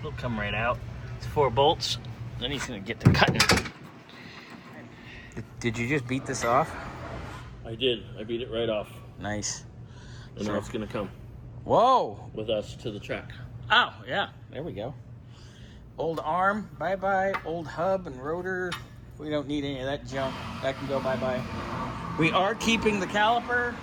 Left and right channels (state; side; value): identical; both; correlation 1.00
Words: come right out. It's 4 bolts. Then he's gonna get to cutting. Did you just beat this off? I did. I beat it right off. Nice. And now it's gonna come. Whoa! With us to the track. Oh, yeah. There we go. Old arm, bye-bye. Old hub and rotor. We don't need any of that junk. That can go bye-bye. We are keeping the caliper